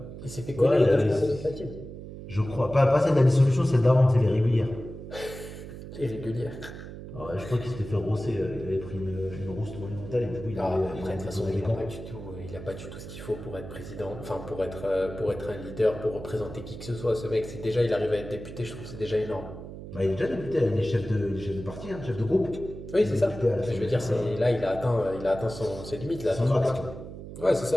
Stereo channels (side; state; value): right; noise; hum, 12 dB below the sound